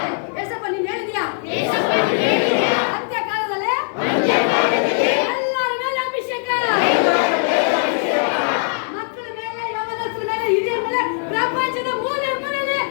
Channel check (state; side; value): silent; right; 57 dB below the other